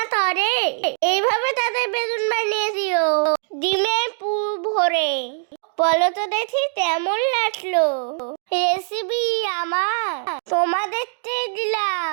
করে, এইভাবে তাদের বেগুন বানিয়ে দিও ডিমের পুর ভরে। বলো তো দেখি কেমন লাগলো রেসিপি আমার? তোমাদেরকে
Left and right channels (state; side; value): silent; left; 64 dB below the other